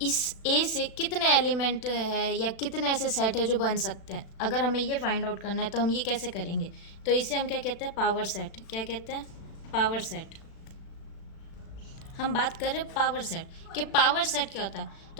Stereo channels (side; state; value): right; late; 36 ms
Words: इस ए से कितने एलिमेंट है या कितने ऐसे सेट है जो बन सकते हैं? अगर हमें ये फाइंड आउट करना है तो हम ये कैसे करेंगे? तो इसे हम क्या कहते हैं? Power set. क्या कहते हैं? Power set. हम बात कर रहे हैं पावर सेट कि पावर सेट क्या होता है।